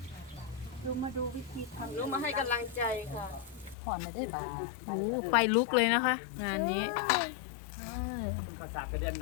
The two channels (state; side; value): drops out; right; at 3.8 s